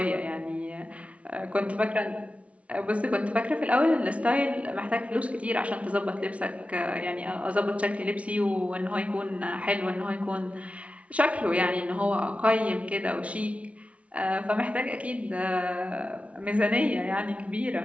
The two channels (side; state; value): left; late; 0.064 ms